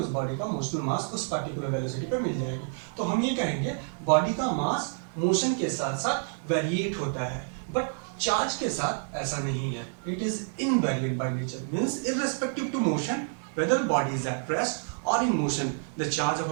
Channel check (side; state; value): left; silent; 58 dB below the other